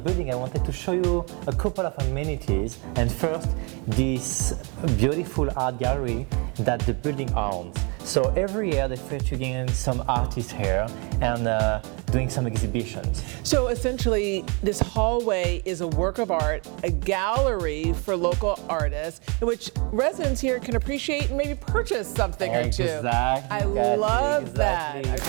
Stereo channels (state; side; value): quieter; left; 32.4 dB